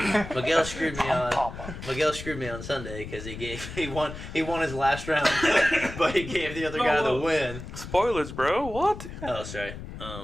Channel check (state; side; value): noise; left; rumble, 11 dB below the sound